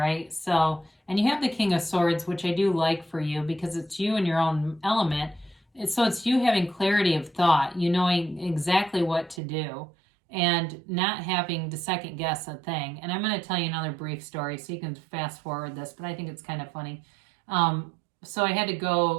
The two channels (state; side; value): drops out; left; at 9.4 s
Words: So, and you have the King of Swords, which I do like for you, because it's you in your own element. So it's you having clarity of thought, you knowing exactly what to do, and not having to second guess a thing. And I'm going to tell you another brief story, so you can fast forward this, but I think it's kind of funny. So I had to